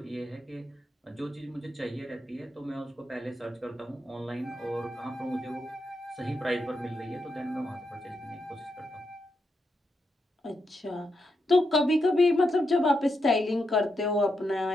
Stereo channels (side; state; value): both; normal; correlation 0.84